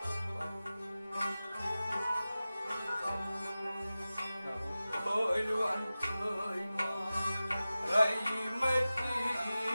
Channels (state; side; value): inverted; both; correlation -0.96